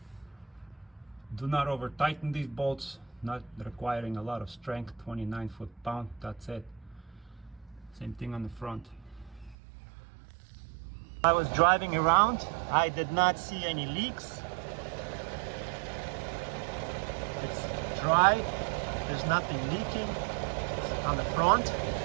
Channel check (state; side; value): drops out; left; at 9.6 s